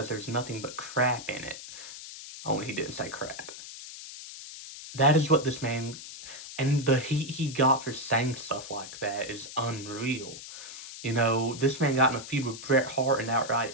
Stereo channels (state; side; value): noise; left; hiss, 12 dB below the sound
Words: there's nothing but crap in it. Only he didn't say crap. That is what this man, and the heat he got for saying stuff like that is unreal. You know, this man got in a feud with Bret Hart and outright